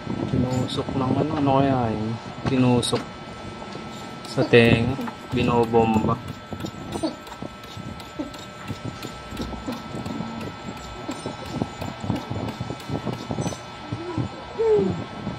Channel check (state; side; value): identical; both; correlation 1.00